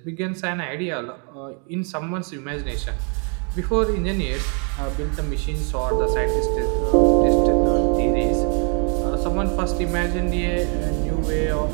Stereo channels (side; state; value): left; quieter; 38.3 dB